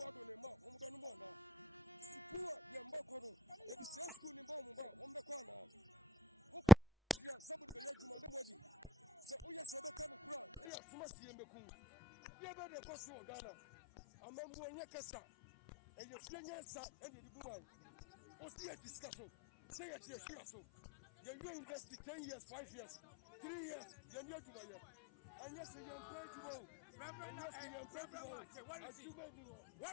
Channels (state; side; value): drops out; right; at 10.7 s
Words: Nema, Umbanumana. Sipua, Yambakoro, the same school in Bomba, Umbakwana. Somebody Yajuma, nobody. So, oh, yes, I become a crowd. They are Sumasi and Beku. You better go to Ghana. Amambo Yakasa, and your Fianasa and the Buman. O see a discussion, say it here, so. You invest 10 years, 5 years, 3 years, you're near to my year. And yes, you're